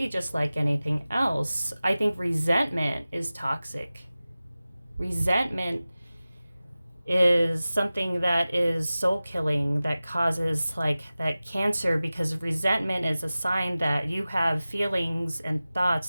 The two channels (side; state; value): both; inverted; correlation -0.97